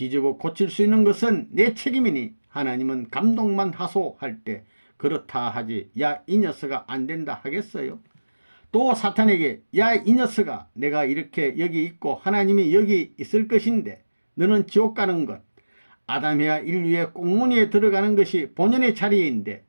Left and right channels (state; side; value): inverted; both; correlation -1.00